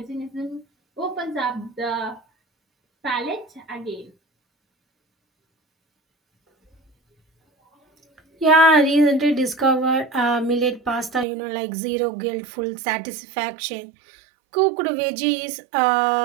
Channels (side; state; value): left; drops out; at 11.2 s